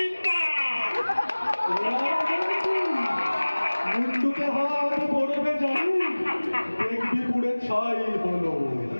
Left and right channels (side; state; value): both; inverted; correlation -1.00